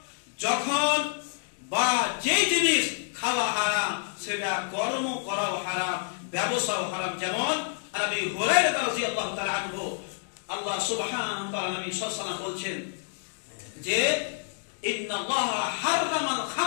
যখন বা যে জিনিস খাওয়া হারাম সেটা কর্ম করাও হারাম, ব্যবসাও হারাম। যেমন আবু হুরায়রা রাদিয়াল্লাহু তাআলা আনহু, আল্লাহ সুবহানাহু ওয়া তাআলা নবী সাল্লাল্লাহু আলাইহি ওয়াসাল্লাম বলছেন যে ইন্নাল্লাহা হাররামাল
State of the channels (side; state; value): right; silent; 59 dB below the other